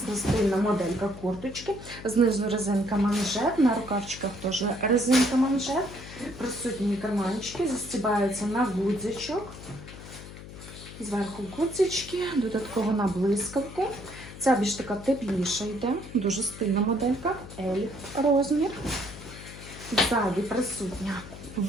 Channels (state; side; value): noise; left; hum, 14 dB below the sound